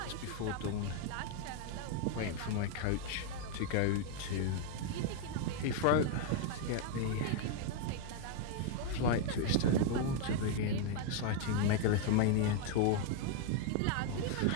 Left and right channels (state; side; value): different; both; correlation 0.00